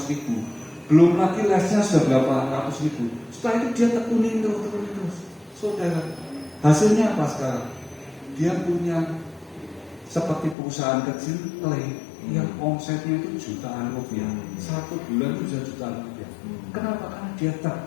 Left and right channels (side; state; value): right; drops out; at 10.6 s